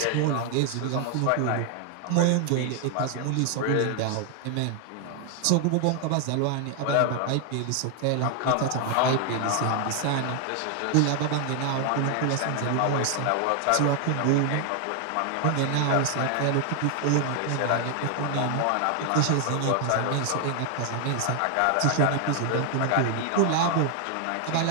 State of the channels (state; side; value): different; both; correlation 0.00